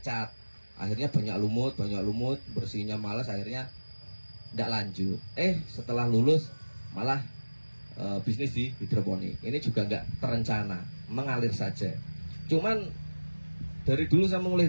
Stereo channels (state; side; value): inverted; both; correlation -1.00